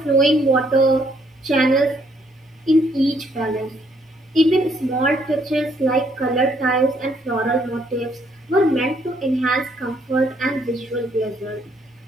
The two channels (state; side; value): normal; both; correlation 0.69